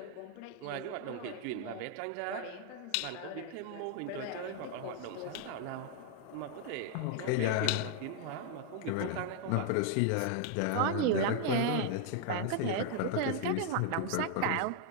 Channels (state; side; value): different; both; correlation 0.00